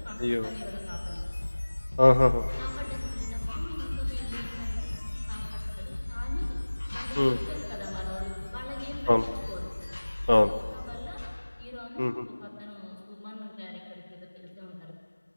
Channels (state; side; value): inverted; both; correlation -1.00